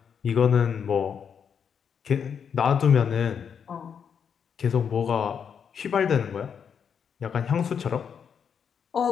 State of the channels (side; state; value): right; quieter; 7.2 dB